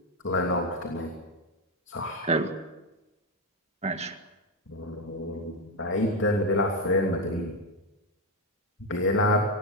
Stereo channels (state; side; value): normal; both; correlation 0.07